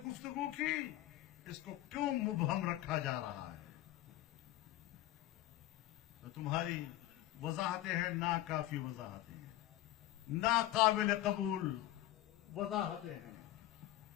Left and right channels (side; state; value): right; quieter; 15.1 dB